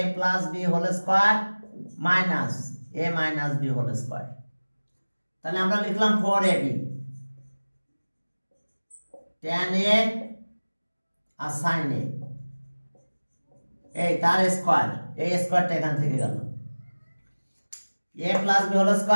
a plus B whole square minus a minus B whole square. তাহলে আমরা লিখলাম 4ab, tan a R sin a, এই তার স্কয়ার, এই স্কয়ারটা এখান থেকে গেল, a plus B whole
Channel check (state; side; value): inverted; both; correlation -1.00